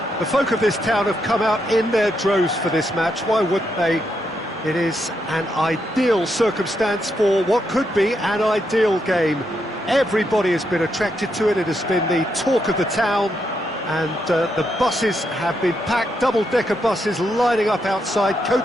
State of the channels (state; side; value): normal; both; correlation 0.80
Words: the folk of this town have come out in their droves for this match. Why wouldn't they? It is an ideal circumstance for what could be an ideal game. Everybody has been attracted to it. It has been the talk of the town and the buses have been packed, double-decker buses lining up outside.